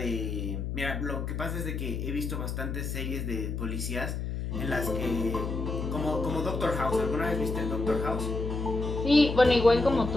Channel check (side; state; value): left; noise; hum, 3 dB below the sound